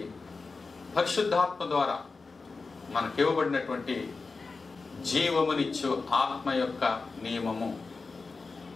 పరిశుద్ధాత్మ ద్వారా మనకి ఇవ్వబడినటువంటి జీవమునిచ్చు ఆత్మ యొక్క నియమము.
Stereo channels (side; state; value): right; quieter; 4.2 dB